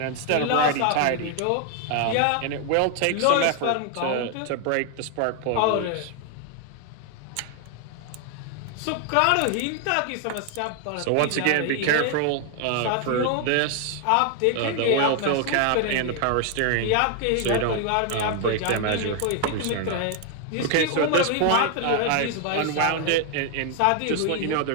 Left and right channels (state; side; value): different; both; correlation 0.00